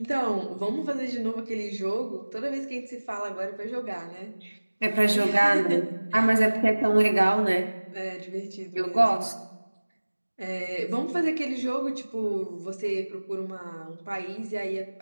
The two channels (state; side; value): inverted; both; correlation -1.00